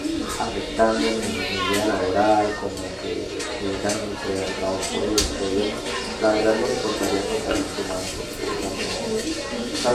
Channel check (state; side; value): identical; both; correlation 1.00